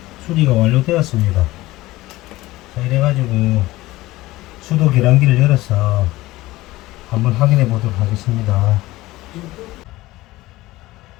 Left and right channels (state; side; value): quieter; right; 18.2 dB